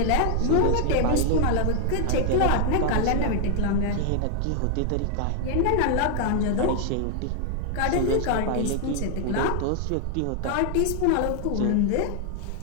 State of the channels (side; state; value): both; different; correlation 0.00